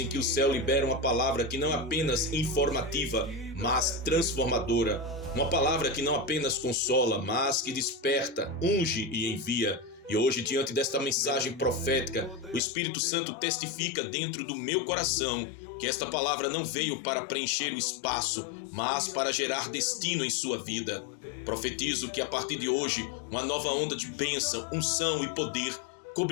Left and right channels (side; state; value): right; drops out; at 12.6 s